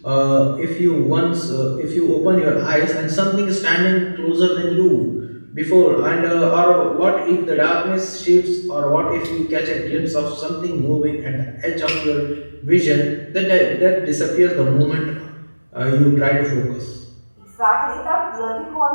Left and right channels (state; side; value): inverted; both; correlation -1.00